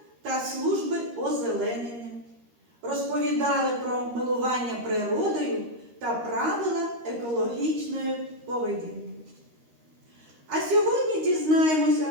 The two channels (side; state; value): left; late; 13 ms